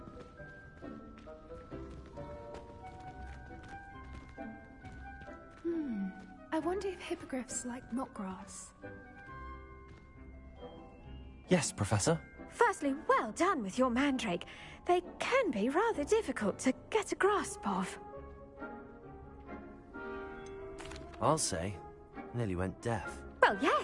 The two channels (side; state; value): both; identical; correlation 1.00